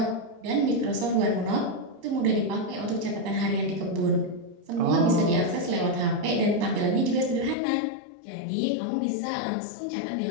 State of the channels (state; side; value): drops out; right; at 7.6 s